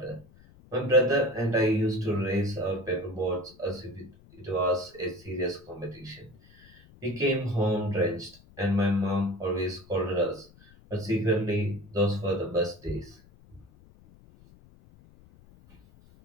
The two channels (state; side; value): noise; left; rumble, 25 dB below the sound